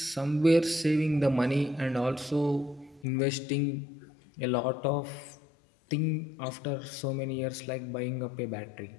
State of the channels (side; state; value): right; drops out; at 3.1 s